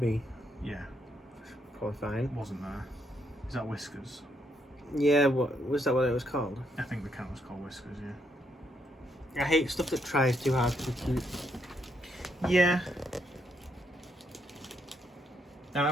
Yeah, Probably fine. wasn't there? Is that Whiskers? Yeah, what was that? What it was called? I think the cat was called Whiskers. Yeah. I hate stuff that tries too hard to be cute. Yeah. I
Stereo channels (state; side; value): normal; both; correlation 0.76